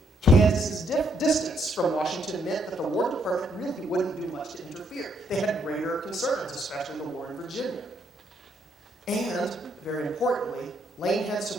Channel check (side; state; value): both; normal; correlation 0.73